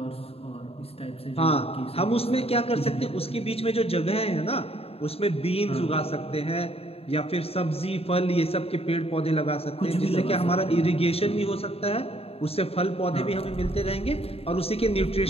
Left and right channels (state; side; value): late; right; 0.28 ms